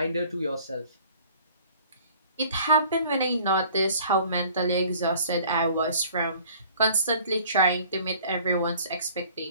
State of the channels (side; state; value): both; inverted; correlation -0.52